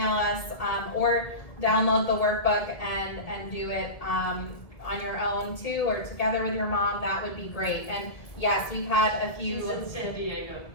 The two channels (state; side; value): late; right; 1.7 ms